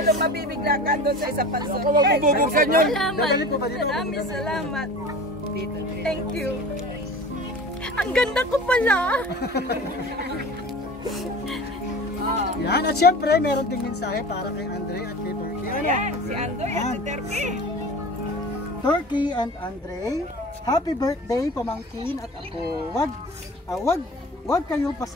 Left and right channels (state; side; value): normal; both; correlation 0.37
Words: mabibigla ka doon sa isa pang surprise. Huwag mo bubuksan yun! Maraming salamat. Thank you. Ang ganda ko pala. Yan, at syempre, meron ding mensahe para kay Andre at kay Turkey. Ano? Si Andoy at si Turkey. Turkey and Andre, happy birthday pamangkin at ako. Wag kayo